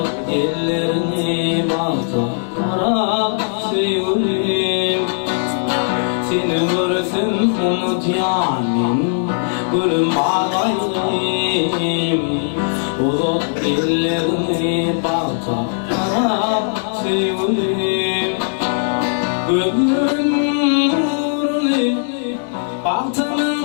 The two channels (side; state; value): right; silent; 67 dB below the other